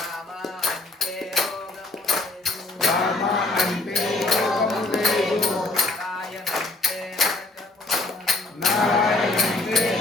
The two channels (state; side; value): quieter; right; 3.0 dB